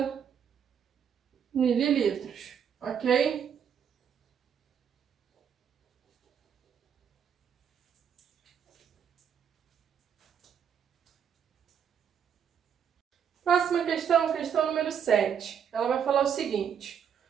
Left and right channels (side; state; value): left; quieter; 8.0 dB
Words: mililitros, ok? Próxima questão, questão número 7. Ela vai falar o seguinte: